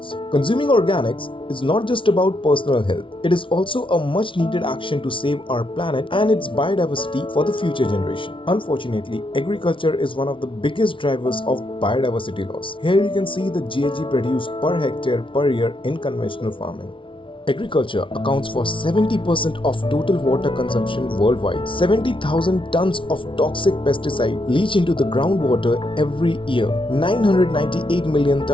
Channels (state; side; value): late; right; 0.25 ms